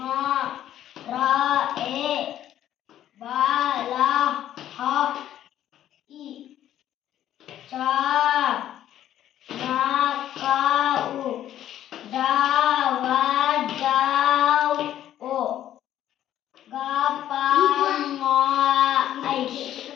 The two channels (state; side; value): quieter; right; 11.7 dB